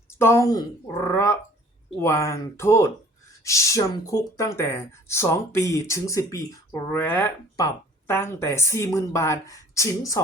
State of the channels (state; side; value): normal; both; correlation 0.51